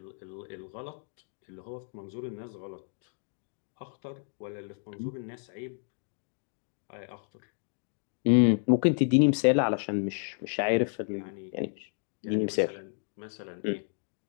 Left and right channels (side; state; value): right; silent; 57 dB below the other